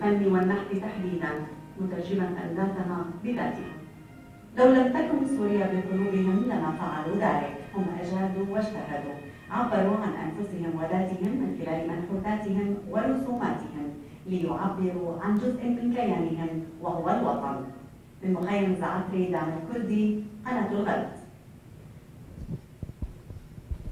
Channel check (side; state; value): both; identical; correlation 1.00